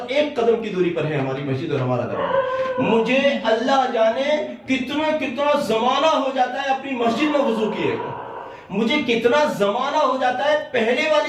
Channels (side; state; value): both; identical; correlation 1.00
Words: 1 قدم کی دوری پر ہے ہماری مسجد اور ہمارا دروازہ. مجھے اللہ جانے کتنا زمانہ ہو جاتا ہے اپنی مسجد میں وضو کیے کو, مجھے کتنا زمانہ ہو جاتا ہے پہلے